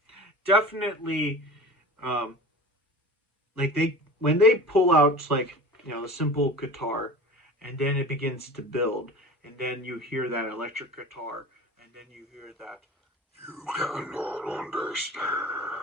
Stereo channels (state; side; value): normal; both; correlation 0.36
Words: definitely, like when they pull out, like, the simple guitar, and then it begins to build, and then you hear that electric guitar, and then you hear that You cannot understand.